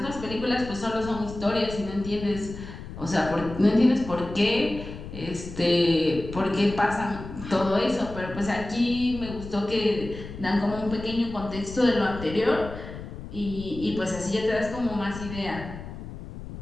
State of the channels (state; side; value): noise; left; rumble, 11 dB below the sound